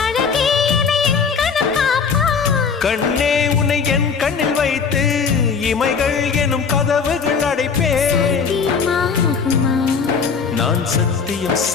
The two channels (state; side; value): quieter; right; 5.8 dB